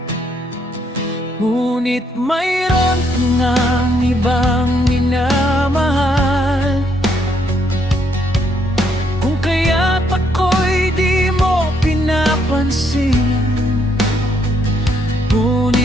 ngunit mayroon ngang ibang minamahal. Kung kaya't ako'y di mo pinapansin,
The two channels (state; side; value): normal; both; correlation 0.72